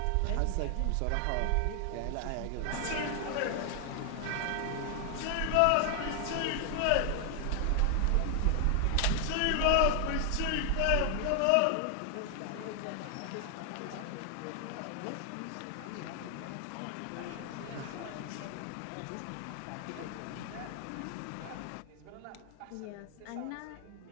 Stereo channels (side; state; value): both; different; correlation 0.00